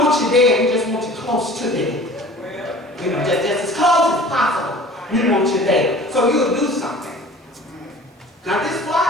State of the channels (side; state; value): both; normal; correlation 0.45